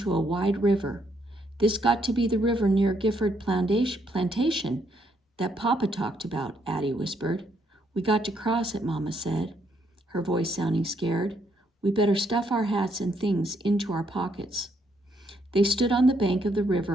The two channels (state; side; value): normal; both; correlation 0.73